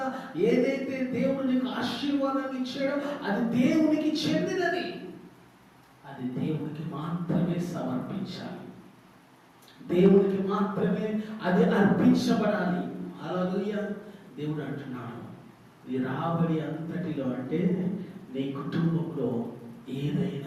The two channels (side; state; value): both; identical; correlation 1.00